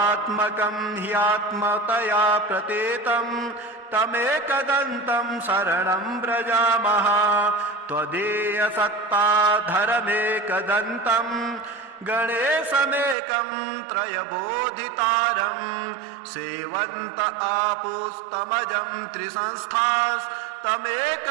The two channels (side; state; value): left; drops out; at 13.2 s